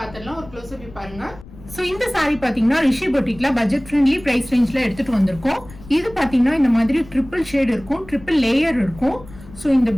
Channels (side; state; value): left; noise; rumble, 19 dB below the sound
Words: ஒரு க்ளோஸ் அப் பாருங்க. ஸோ இந்த சாரீ பாத்தீங்கன்னா ரிஷி பொட்டிக்ல பட்ஜெட் ஃப்ரெண்ட்லி பிரைஸ் ரேஞ்ச்ல எடுத்துட்டு வந்திருக்கோம். இது பாத்தீங்கன்னா இந்த மாதிரி ட்ரிபிள் ஷேட் இருக்கும், ட்ரிபிள் லேயர் இருக்கும். ஸோ இந்த